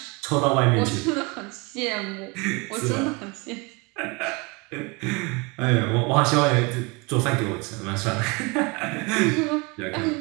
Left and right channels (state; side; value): quieter; left; 28.0 dB